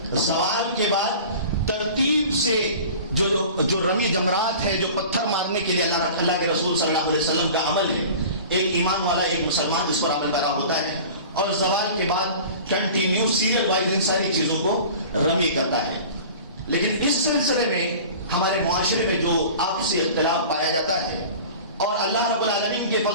سوال کے بعد ترتیب سے جو رمی جمرات ہے, جو پتھر مارنے کے لیے اللہ کے رسول صلی اللہ علیہ وسلم کا عمل ہے, ایک ایمان والا ایک مسلمان اس پر عمل کرا ہوتا ہے اور زوال کے بعد کنٹینیو سیریل وائز ان ساری چیزوں کو رمی کرتا ہے. لیکن اس سلسلے میں ہمارے معاشرے میں جو آپسی اختلاف پایا جاتا ہے, اور اللہ رب العالمین کے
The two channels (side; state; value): both; inverted; correlation -0.40